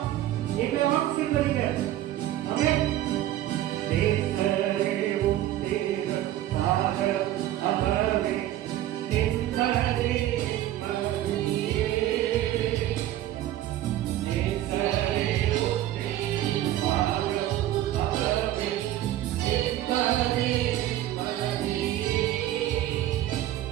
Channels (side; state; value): left; quieter; 13.6 dB